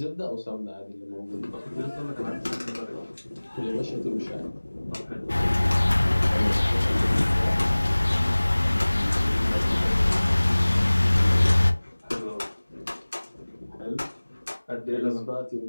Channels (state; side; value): inverted; both; correlation -1.00